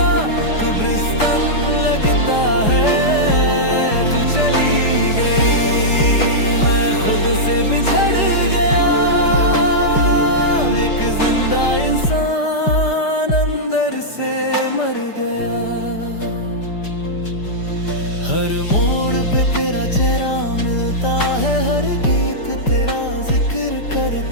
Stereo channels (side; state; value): right; late; 5.0 ms